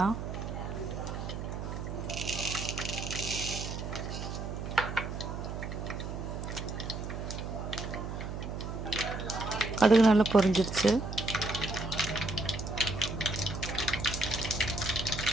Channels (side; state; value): right; noise; hum, 5 dB below the sound